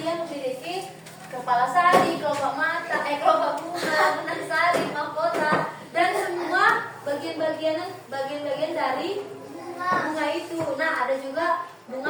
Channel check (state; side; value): identical; both; correlation 1.00